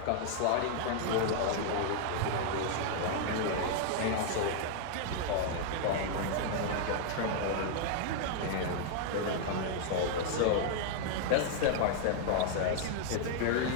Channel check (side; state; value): both; different; correlation 0.00